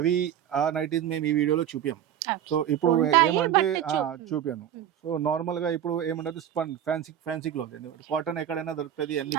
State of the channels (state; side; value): quieter; left; 10.3 dB